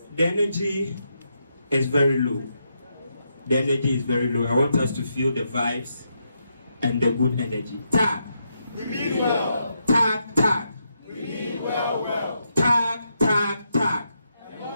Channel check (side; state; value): both; inverted; correlation -0.81